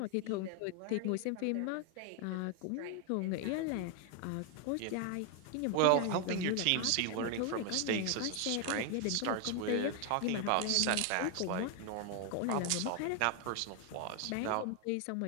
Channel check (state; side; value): different; both; correlation 0.00